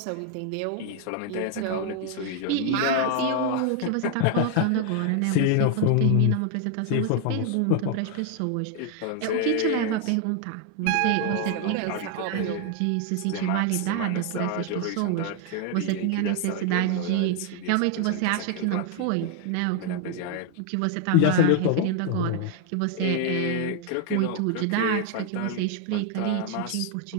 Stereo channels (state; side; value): different; both; correlation 0.01